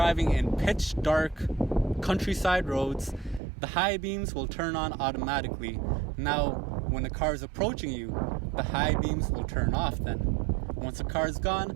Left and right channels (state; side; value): drops out; left; at 3.4 s